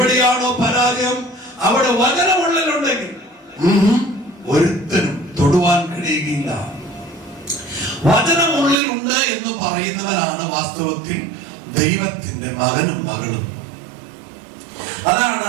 പരാജയം, അവിടെ വചനമുള്ളിലുണ്ടെങ്കിൽ ഒരുത്തനും തൊടുവാൻ കഴിയുകയില്ല. വചനമുള്ളിൽ ഉണ്ട് എന്ന് പറയുന്നവനാണ് വാസ്തവത്തിൽ ദൈവത്തിന്റെ മകനും മകളും.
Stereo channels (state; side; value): drops out; left; at 8.8 s